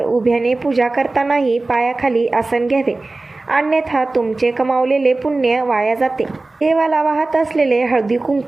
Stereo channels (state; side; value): quieter; left; 3.2 dB